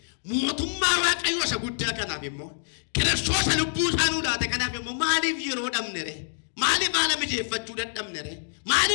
mootummaa waaqayyoo isa guddaa kanaaf immoo Kiristoos lubbuu isaanuu laate kanaaf immoo maaliif yeroo dhabne re maaliif haala mijeeffachuu dadhabne re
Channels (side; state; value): right; silent; digital silence